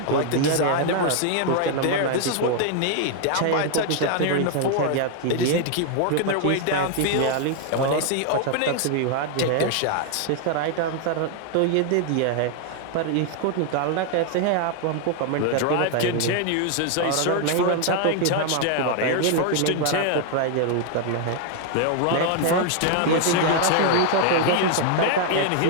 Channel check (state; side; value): different; both; correlation 0.00